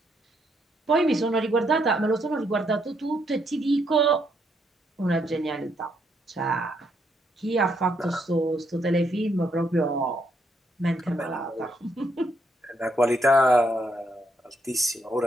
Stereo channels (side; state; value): both; normal; correlation 0.74